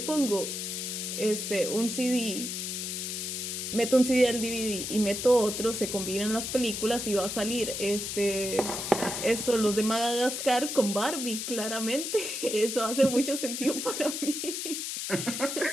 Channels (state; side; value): noise; left; hiss, 4 dB below the sound